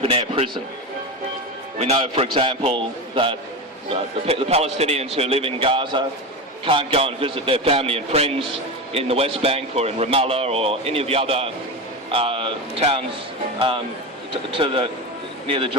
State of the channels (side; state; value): both; normal; correlation 0.21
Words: prison. We know, for example, that the Palestinians who live in Gaza can't go and visit their family and friends in the West Bank or in Ramallah or any of the other towns near the